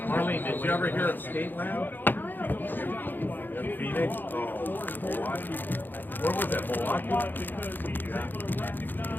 Marlene, did you ever hear of Skateland? In Phoenix? Oh, Milwaukee. Where was that, Milwaukee?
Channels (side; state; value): right; late; 0.091 ms